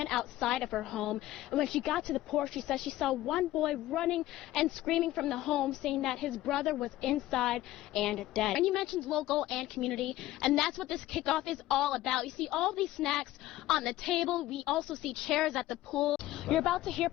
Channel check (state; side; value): quieter; right; 15.5 dB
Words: outside of her home, and when she got to the porch, she said she saw one boy running and screaming from the home, saying that his brother was inside and dead. And you mentioned local and community, and that's what this kickoff is all about. You see all these snacks on the table. We also see chairs at the pool. You're about to hear